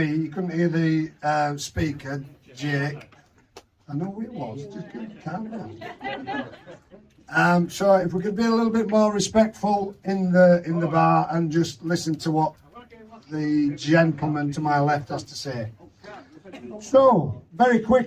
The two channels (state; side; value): identical; both; correlation 1.00